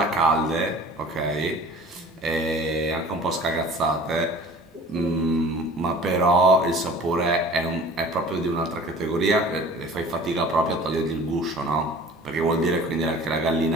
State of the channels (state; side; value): normal; both; correlation 0.45